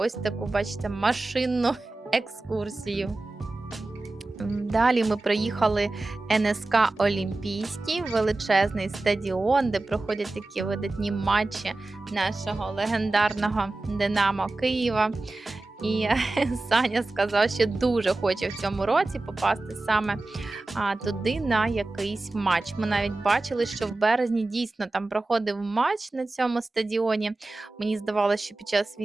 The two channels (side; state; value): left; quieter; 3.0 dB